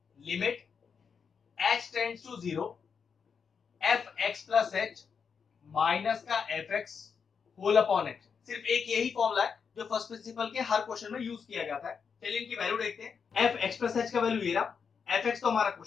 limit h tends to zero f x plus h minus का f x whole upon h. सिर्फ एक यही फॉर्मूला है जो फर्स्ट प्रिंसिपल के हर क्वेश्चन में यूज किया जाता है। चलिए इनकी वैल्यू देखते हैं। एफ एक्स प्लस एच का वैल्यू ये रहा, एफ एक्स तो हमारा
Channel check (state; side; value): quieter; right; 6.2 dB